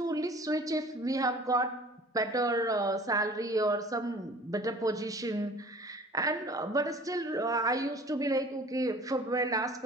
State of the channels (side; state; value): both; normal; correlation 0.47